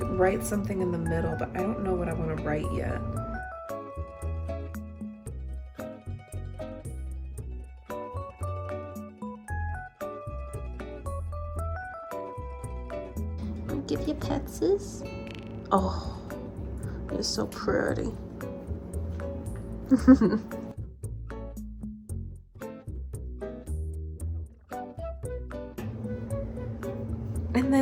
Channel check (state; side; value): identical; both; correlation 1.00